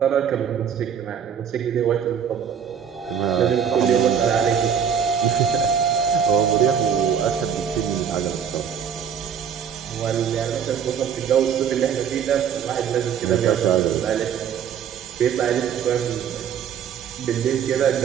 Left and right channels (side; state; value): left; quieter; 7.9 dB